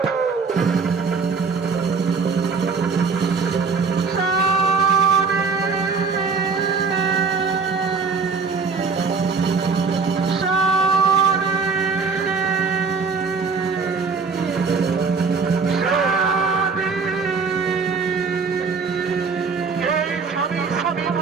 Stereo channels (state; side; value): quieter; left; 5.0 dB